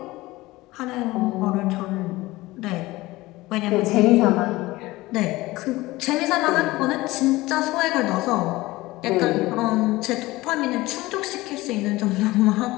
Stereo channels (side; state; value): right; quieter; 19.4 dB